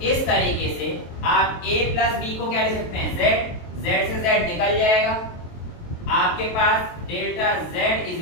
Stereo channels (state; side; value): late; right; 23 ms